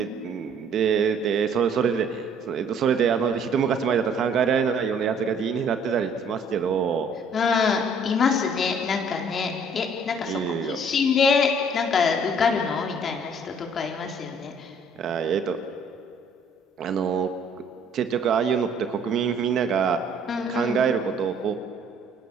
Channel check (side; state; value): both; normal; correlation 0.58